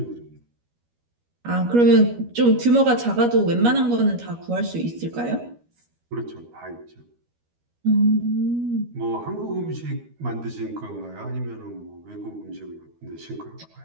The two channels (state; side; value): late; left; 13 ms